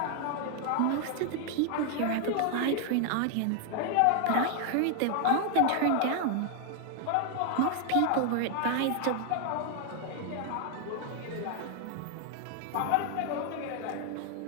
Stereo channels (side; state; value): both; different; correlation 0.00